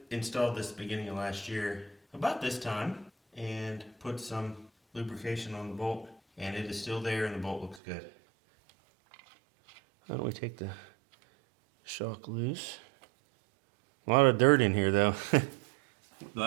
installed this beginning of last year, about this time, and put some lubrication on the bolt, and it is still there and the bolt looks good. How do we take the shock loose? A lot of dirt in here though. The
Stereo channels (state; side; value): drops out; left; at 7.8 s